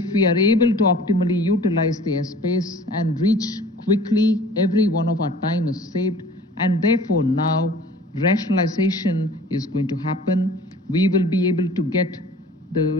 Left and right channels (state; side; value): normal; both; correlation 0.47